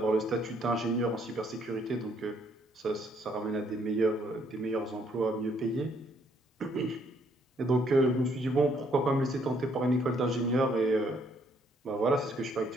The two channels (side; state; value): both; normal; correlation 0.68